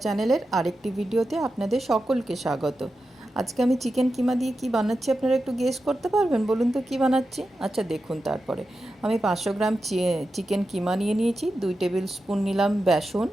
চ্যানেলের আরেকটি ভিডিওতে আপনাদের সকলকে স্বাগত। আজকে আমি চিকেন কিমা দিয়ে কি বানাচ্ছি আপনারা একটু গেস করতে পারবেন? বলুন তো কী বানাচ্ছি? আচ্ছা দেখুন, তারপরে আমি 500 গ্রাম চিকেন কিমা নিয়ে নিয়েছি। 2 টেবিল স্পুন নিলাম বেসন,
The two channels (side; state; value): both; normal; correlation 0.91